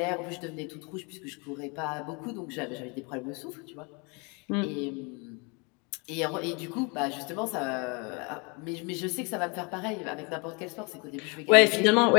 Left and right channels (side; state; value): right; quieter; 31.4 dB